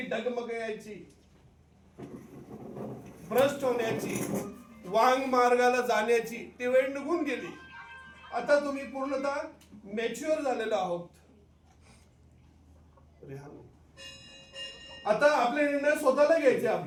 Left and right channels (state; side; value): identical; both; correlation 1.00